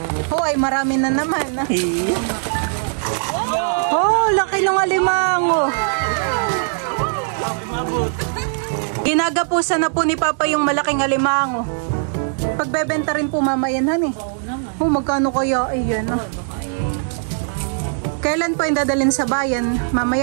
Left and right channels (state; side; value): silent; left; 66 dB below the other